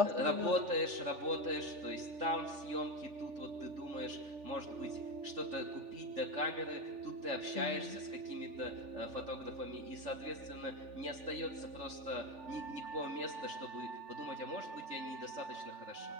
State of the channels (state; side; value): late; left; 3.4 ms